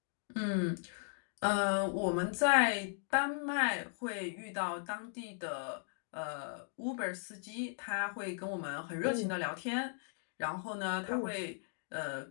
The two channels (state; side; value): silent; right; digital silence